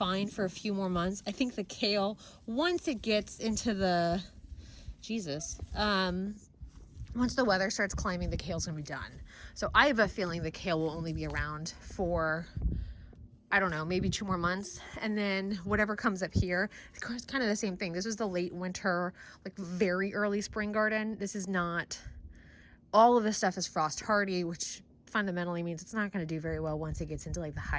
for a few more months. I think the kale, once it gets into the, once the weather starts climbing, the kale's gonna be done. So I have a feeling the kale will only be around for, I don't know, maybe 2 more months. And then whatever comes up here, it's kind of the same thing. This is the late winter, like very early spring garden. This is not, all of this stuff is frost hardy, which fundamentally means it's not going to do very well once it gets into like the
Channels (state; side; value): identical; both; correlation 1.00